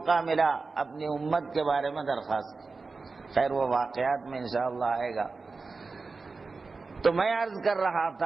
ملا اپنی امت کے بارے میں درخواست کی۔ خیر وہ واقعات میں انشاءاللہ آئے گا۔ تو میں عرض کر رہا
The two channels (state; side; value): quieter; left; 4.1 dB